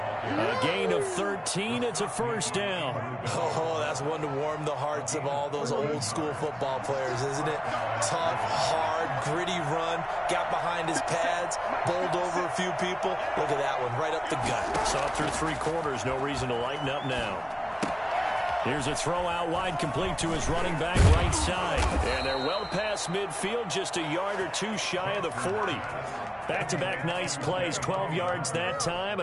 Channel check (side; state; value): both; identical; correlation 1.00